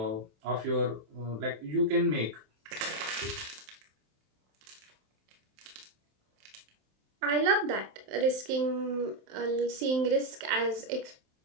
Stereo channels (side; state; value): left; late; 27 ms